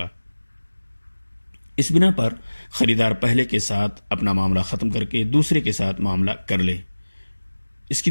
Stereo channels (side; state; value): both; inverted; correlation -1.00